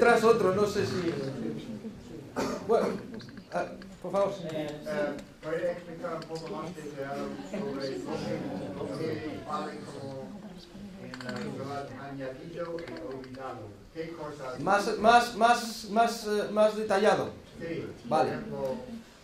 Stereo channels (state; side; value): identical; both; correlation 1.00